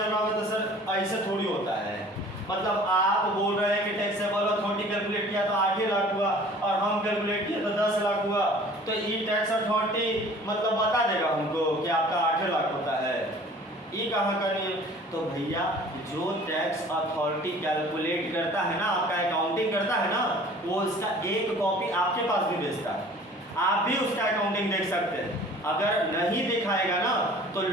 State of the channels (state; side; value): normal; both; correlation 0.48